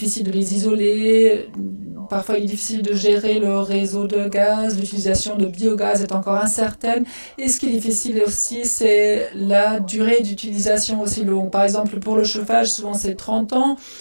de les isoler. Parfois, il est difficile de gérer le réseau de gaz. L'utilisation de biogaz est encore incertaine. Et ce qui est difficile aussi, c'est la durée d'utilisation aussi longue. Par exemple, pour le chauffage, souvent c'est 30 ans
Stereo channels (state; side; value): inverted; both; correlation -1.00